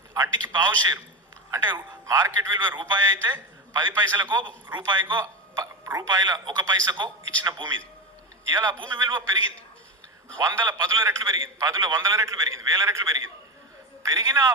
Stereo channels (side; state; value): both; normal; correlation 0.19